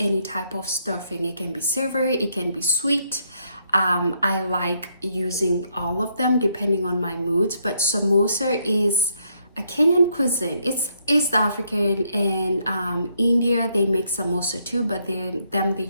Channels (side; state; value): both; inverted; correlation -0.74